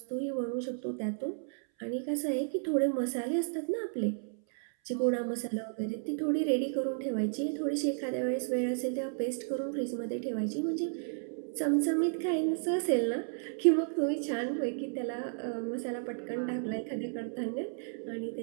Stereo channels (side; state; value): left; silent; 56 dB below the other